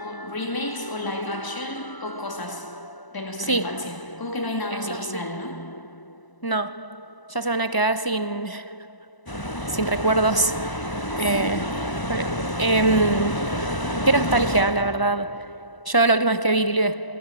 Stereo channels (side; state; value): right; late; 1.0 ms